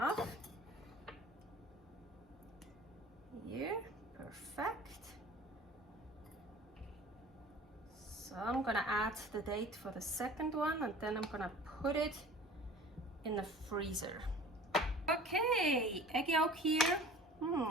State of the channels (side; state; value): both; normal; correlation 0.44